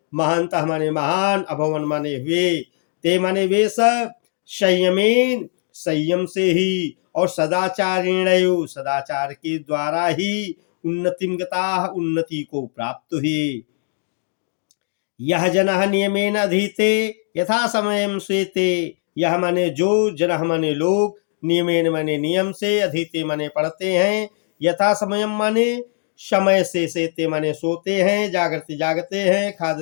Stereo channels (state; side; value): silent; right; 65 dB below the other